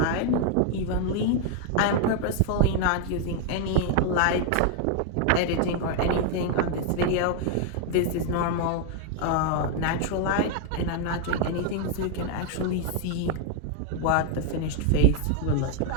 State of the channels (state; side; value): different; both; correlation 0.00